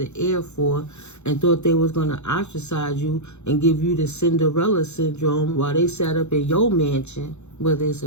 heir for, and thought they was going to ostracize you and give you the Cinderella syndrome while they sat up in your mansion, whether it's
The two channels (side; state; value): right; late; 0.82 ms